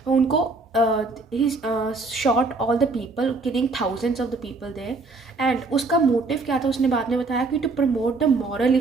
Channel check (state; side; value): quieter; left; 3.6 dB